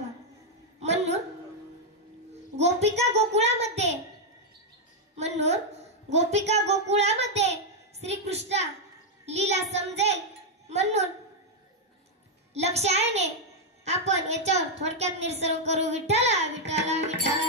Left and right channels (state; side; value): normal; both; correlation -0.01